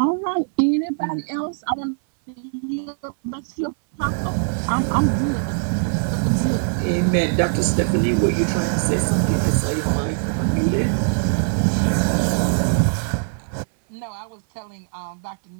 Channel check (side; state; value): left; silent; 59 dB below the other